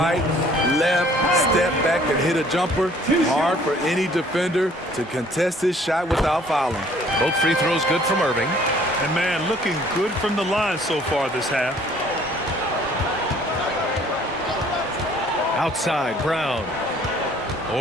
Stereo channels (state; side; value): normal; both; correlation 0.57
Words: left, step back, and hit a jumper. Hard for any defender to contest his shot without fouling. Both free throws good from Irving. And man, looking good from the line so far this half. Outside, Brown.